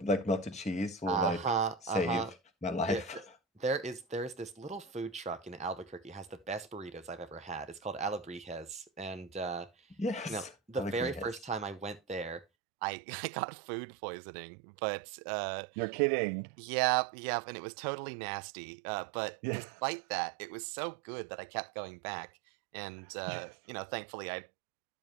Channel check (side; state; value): left; drops out; at 12.5 s